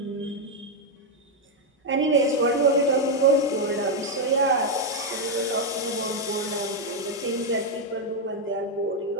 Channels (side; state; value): both; normal; correlation 0.01